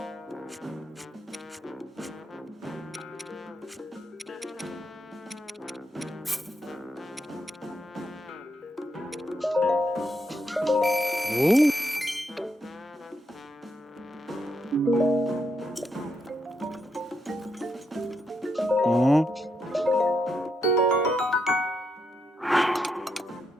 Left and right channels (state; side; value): normal; both; correlation 0.80